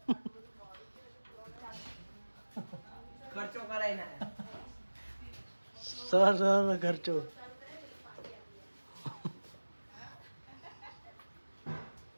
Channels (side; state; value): both; inverted; correlation -1.00